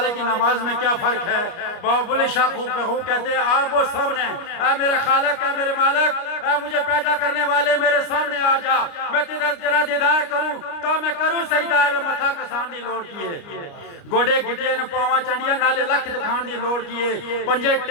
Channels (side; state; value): right; late; 29 ms